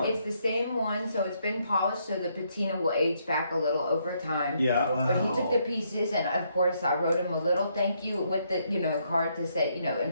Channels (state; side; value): inverted; both; correlation -0.74